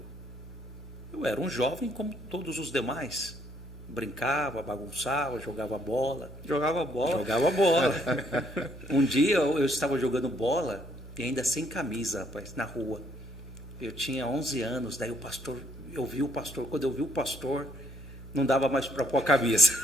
Eu era um jovem como todos os demais. Brincava, bagunçava, jogava bola. Jogava bola? Jogava bola. Um dia eu estava jogando bola e ainda sem camisa, rapaz, na rua. Eu tinha 11 anos, daí eu vi o pastor. Quando eu vi o pastor, não dava mais para pôr a camisa.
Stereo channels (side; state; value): both; normal; correlation 0.69